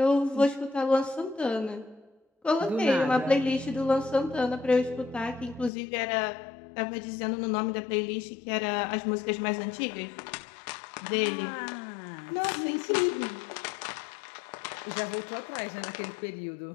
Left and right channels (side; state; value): right; drops out; at 5.7 s